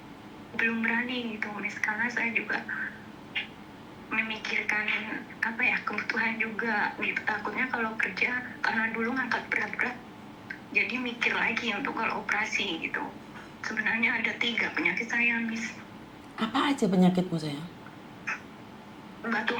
belum berani gitu Miss, karena saya juga memikirkan kebutuhan juga gitu, takutnya kalau kerja karena dulu ngangkat berat-berat jadi mikir lagi untuk kalau operasi gitu. Sebenarnya ada 3 penyakit saya Miss. Apa aja penyakitmu sayang? Batu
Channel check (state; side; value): identical; both; correlation 1.00